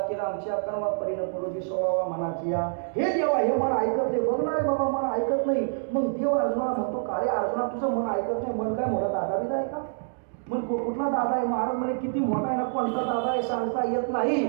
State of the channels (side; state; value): left; silent; digital silence